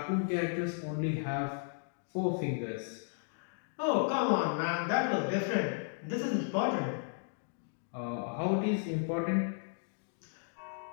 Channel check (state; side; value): silent; right; digital silence